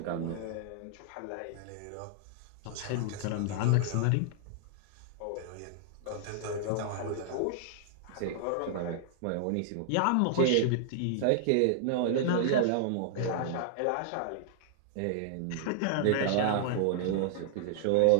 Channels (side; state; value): both; different; correlation -0.01